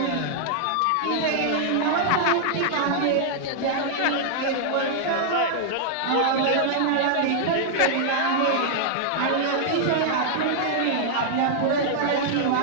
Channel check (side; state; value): both; different; correlation -0.01